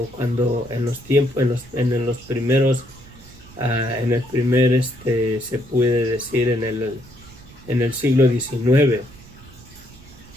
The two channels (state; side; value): noise; right; rumble, 21 dB below the sound